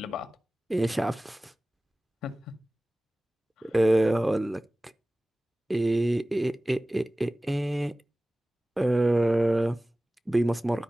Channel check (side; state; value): both; normal; correlation 0.98